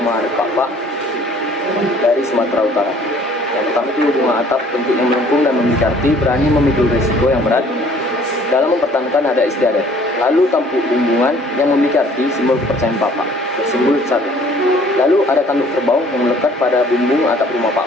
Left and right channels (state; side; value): normal; both; correlation 0.56